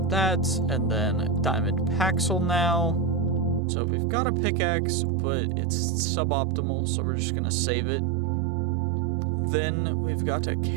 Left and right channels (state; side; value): drops out; left; at 3.6 s